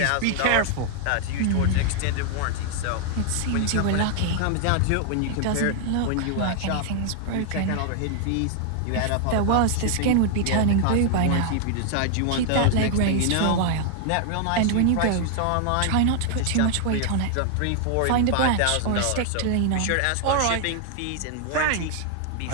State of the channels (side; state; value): both; different; correlation 0.00